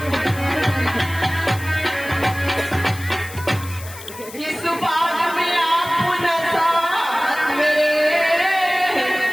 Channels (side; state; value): left; noise; hiss, 16 dB below the sound